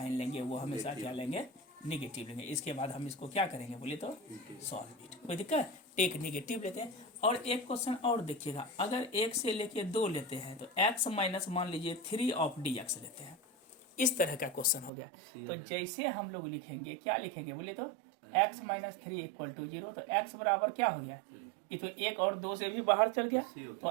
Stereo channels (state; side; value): drops out; left; at 14.9 s